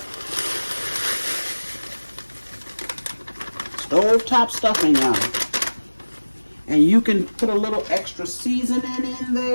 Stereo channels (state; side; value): inverted; both; correlation -1.00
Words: Stove top stuffing, y'all. And you can put a little extra seasoning in